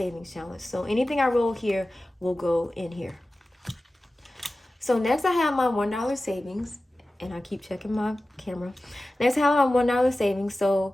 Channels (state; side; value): normal; both; correlation 0.96